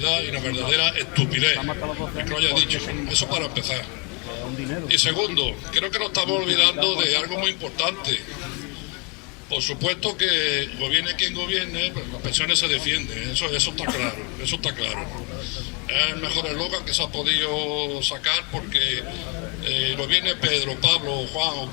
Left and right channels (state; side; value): quieter; right; 29.0 dB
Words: y una verdadera estupidez el que lo haya dicho. Eso para empezar. Y segundo, creo que nos estamos olvidando de algo muy importante. Por supuesto que gobierne quien gobierne, pues las pensiones se defienden, eso está claro, eso está claro. Es el mejor eslogan que se ha podido sacar porque gobierne Pedro, Pablo, Juan o